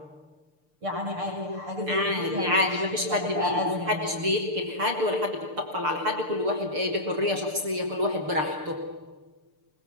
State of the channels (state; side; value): late; left; 6.7 ms